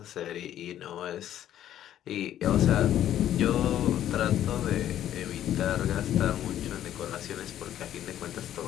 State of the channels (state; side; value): quieter; right; 11.5 dB